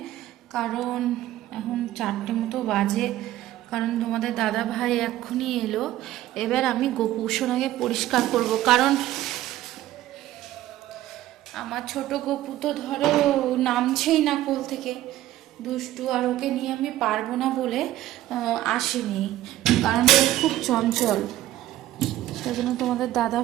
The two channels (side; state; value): left; quieter; 14.4 dB